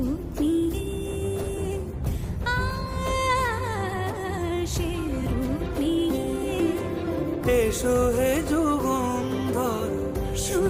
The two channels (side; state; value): both; identical; correlation 1.00